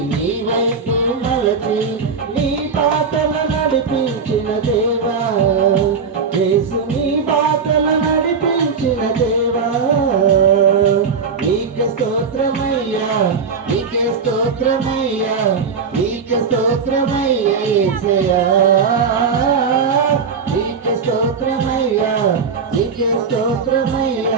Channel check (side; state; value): left; quieter; 5.6 dB